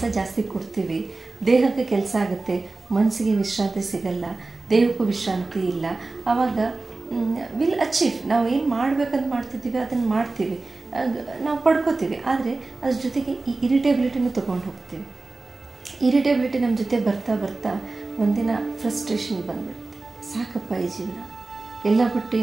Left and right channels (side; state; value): left; quieter; 3.4 dB